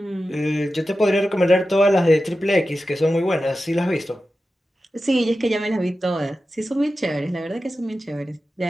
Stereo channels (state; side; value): normal; both; correlation 0.93